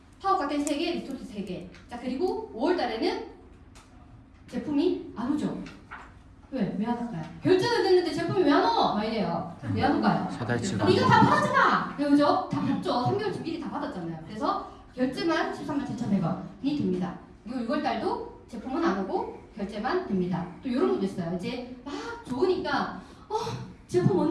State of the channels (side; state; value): both; identical; correlation 1.00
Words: 파워 칵테일 3개, 리스토트 3개. 자, 그리고 5월달에는 제품이 안 오죠. 왜 안 올까요? 결제는 됐는데 제품이 왜 안 와? 막 이래요. 왜 안 올까요? 사달치가 이거 다 받았잖아. 그죠? 다 받죠. 3개월치 미리 다 받았잖아요. 그래서 결제만 137,100원이 됩니다. 그리고 6월달도 제품은 안 오고 결제만 됩니다. 또 이런 것도 있어요. 이제 막 좋으니까 제품